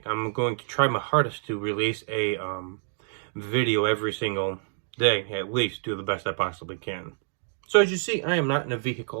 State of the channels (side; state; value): left; silent; 60 dB below the other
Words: I'm going to try my hardest to release a video every single day, at least do the best I possibly can. So as you see, I am not in a